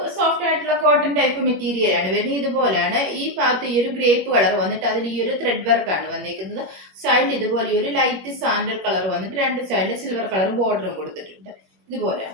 സോഫ്റ്റ് ആയിട്ടുള്ള കോട്ടൺ ടൈപ്പ് മെറ്റീരിയൽ ആണ് വരുന്നത്. ഇതുപോലെയാണ്. ഈ ഭാഗത്ത് ഈ ഒരു ഗ്രേപ്പ് കളർ വന്നിട്ട് അതിൽ ഈ ഒരു ത്രെഡ് വർക്ക് ആണ് വന്നിരിക്കുന്നത്. സൈഡിൽ ഇതുപോലെ ഒരു ലൈറ്റ് സാൻഡൽ കളർ വന്നിട്ട് രണ്ട് സൈഡിൽ സിൽവർ കളർ ബോർഡറും കൊടുത്തിട്ടുണ്ട്.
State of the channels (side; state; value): left; late; 21 ms